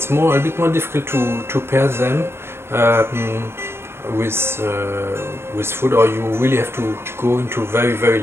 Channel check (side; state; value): left; late; 0.12 ms